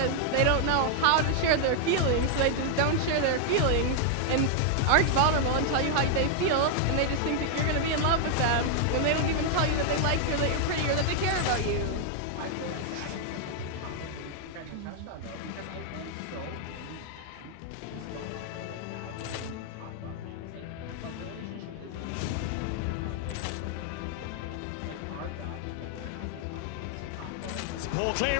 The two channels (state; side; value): different; both; correlation 0.00